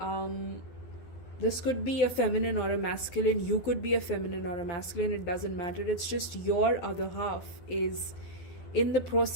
this could be a feminine or a masculine. You could be a feminine or a masculine. It doesn't matter. It's just your other half is in the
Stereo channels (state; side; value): late; right; 12 ms